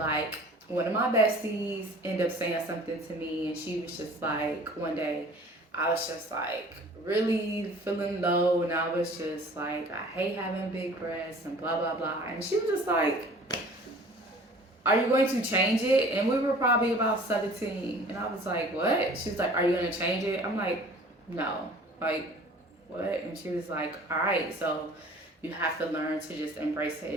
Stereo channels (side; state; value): both; normal; correlation 0.48